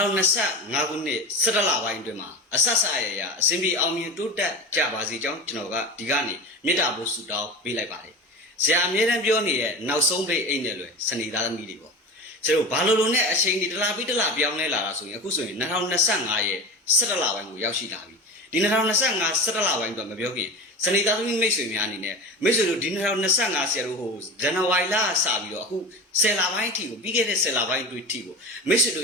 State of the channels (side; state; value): both; normal; correlation 0.29